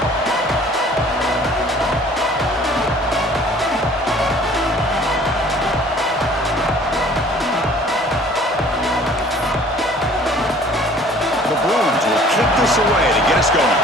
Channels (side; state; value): both; normal; correlation 0.52